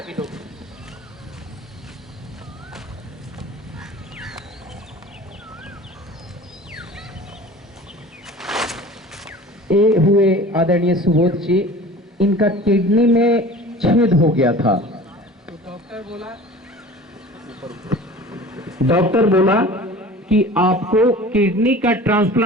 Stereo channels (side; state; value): both; normal; correlation 0.41